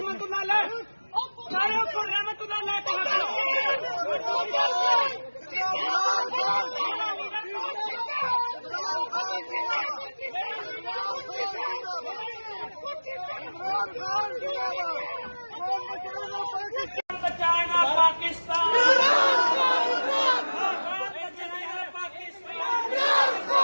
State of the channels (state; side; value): inverted; both; correlation -1.00